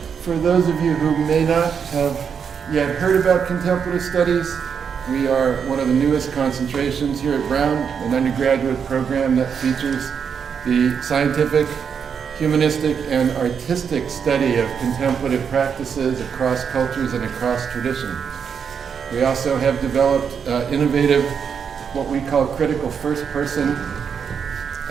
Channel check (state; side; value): quieter; left; 6.9 dB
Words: For those of you who may not have yet heard about Contemplative Studies, we are one of the newest concentrations here at Brown, an undergraduate program that features the scientific, humanistic, and artistic study of contemplative practices across cultures and across tradition. We also have developed innovative, what we call critical first-person